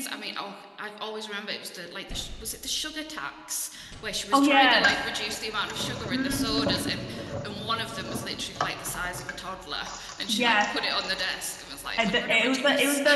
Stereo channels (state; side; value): identical; both; correlation 1.00